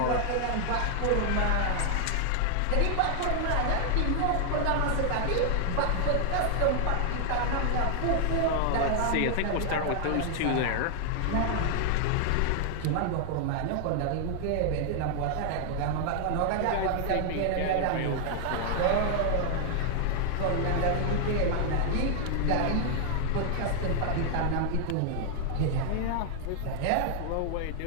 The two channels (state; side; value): different; both; correlation 0.00